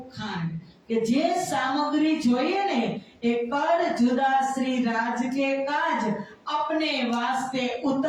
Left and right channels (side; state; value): both; identical; correlation 1.00